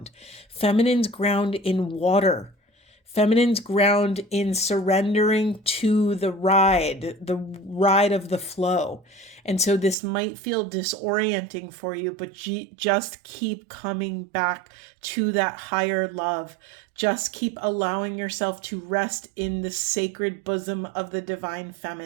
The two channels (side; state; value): left; drops out; at 10.0 s